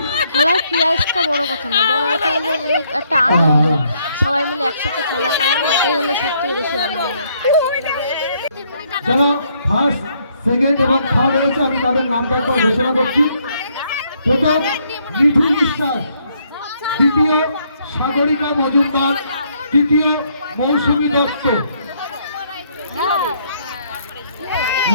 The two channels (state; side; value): inverted; both; correlation -0.70